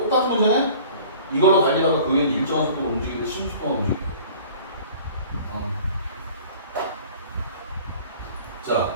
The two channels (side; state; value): both; inverted; correlation -0.47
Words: 문제네? 이걸로 달리다가 그게 일정한 속도로 움직이고 10초 동안 움직이고. 자,